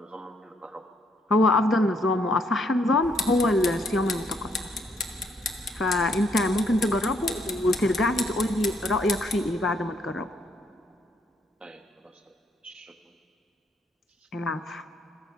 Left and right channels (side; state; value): both; normal; correlation 0.72